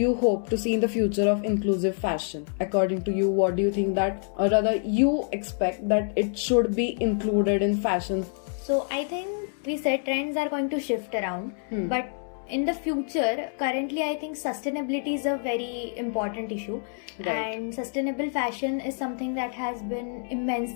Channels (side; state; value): right; silent; 60 dB below the other